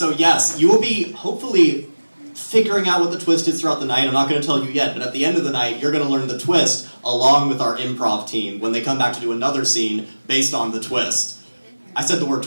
yes, you will be hopefully figuring out what the twist is throughout the night. I'm not going to tell you yet, but at the end of the night, you're going to learn the twist along with our improv team when they come back to do another scene based on the twist. I said the word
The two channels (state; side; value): inverted; both; correlation -1.00